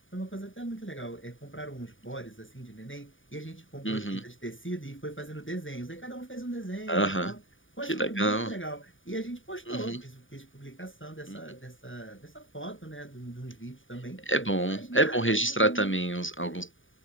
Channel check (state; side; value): late; right; 0.57 ms